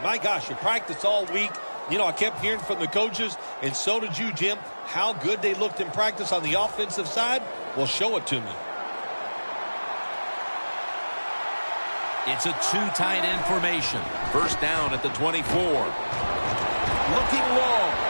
My gosh, you practiced all week. You know, I kept hearing from the coaches, and so did you, Jim, how good they looked in practice on the offensive side. Well, show it to me. It's a 2 tight end formation. First down at the 24. Looking long.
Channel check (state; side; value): inverted; both; correlation -1.00